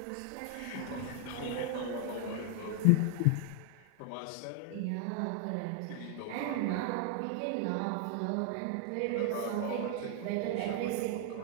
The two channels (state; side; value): different; both; correlation 0.00